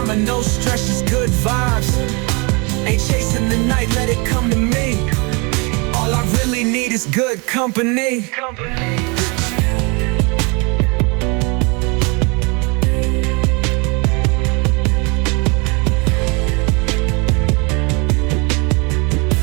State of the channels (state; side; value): quieter; left; 30.2 dB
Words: no stress, just good vibes. Ain't chasing the night, let it come to me. All I really need is good company.